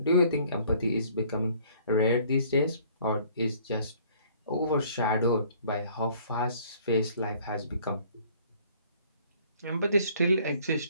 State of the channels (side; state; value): both; inverted; correlation -0.57